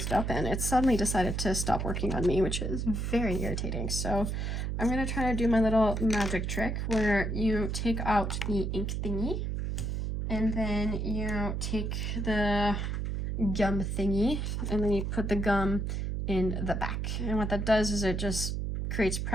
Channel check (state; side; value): noise; right; hum, 1 dB below the sound